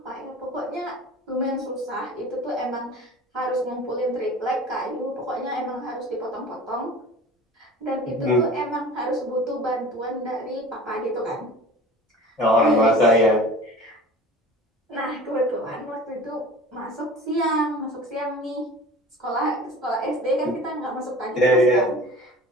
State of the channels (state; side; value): normal; both; correlation 0.40